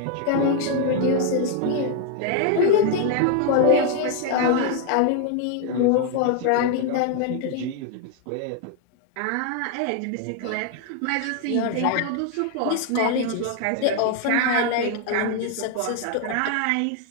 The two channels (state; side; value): different; both; correlation 0.00